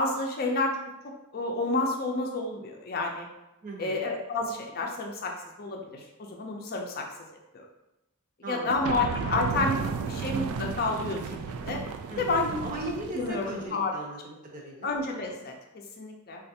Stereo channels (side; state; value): both; normal; correlation 0.04